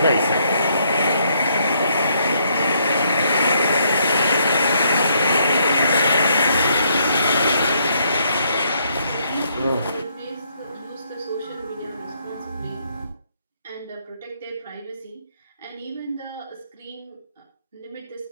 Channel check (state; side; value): inverted; both; correlation -0.72